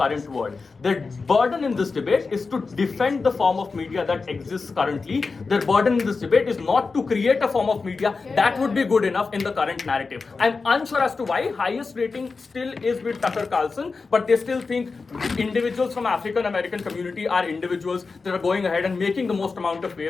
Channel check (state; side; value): quieter; right; 4.4 dB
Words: world. Their burden in this debate is to defend the form of media that exists currently. Their burden in this debate is not to create a form of media that would be good enough in the current narrative. I'm unsure as to why highest rating still is with Tucker Carlson, but they still think individuals from African American community are individuals that are going ahead and making the most amount of